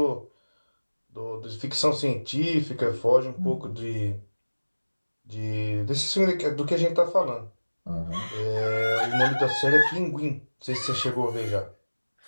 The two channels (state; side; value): inverted; both; correlation -1.00